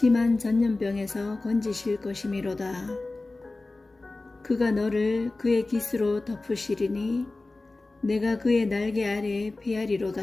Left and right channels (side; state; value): right; quieter; 3.2 dB